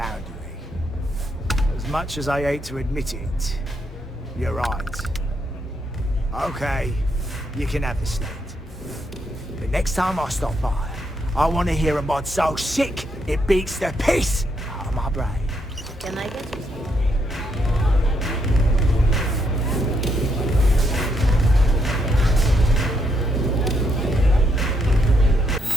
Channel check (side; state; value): both; normal; correlation 0.77